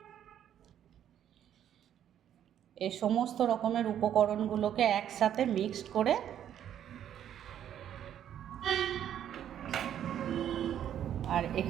এই সমস্ত রকমের উপকরণগুলোকে একসাথে মিক্সড করে আর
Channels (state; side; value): quieter; left; 10.2 dB